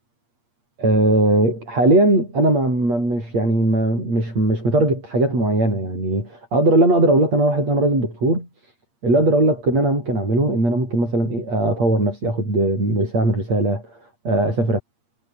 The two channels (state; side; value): late; left; 8.5 ms